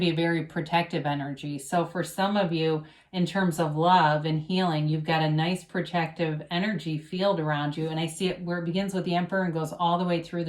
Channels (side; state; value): both; identical; correlation 1.00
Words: be a very protective energy. So for some of you, in terms of love and healing, you've got a nice protective energy field around you. And I see it where it begins with the Emperor and goes all the way through